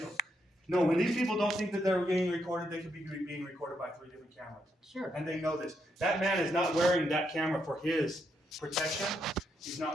No, when these people don't think that they're being recorded, they could be being recorded by 3 different cameras. Sure. And they know this. That man is not wearing that camera for his protection. He's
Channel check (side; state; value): both; normal; correlation 0.79